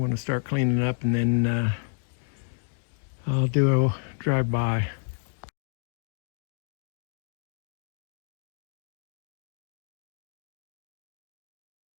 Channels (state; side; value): silent; right; 58 dB below the other